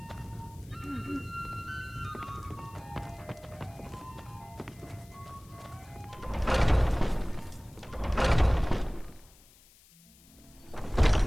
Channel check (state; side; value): noise; left; hiss, 26 dB below the sound